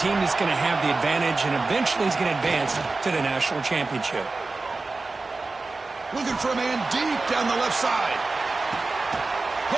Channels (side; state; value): left; quieter; 3.6 dB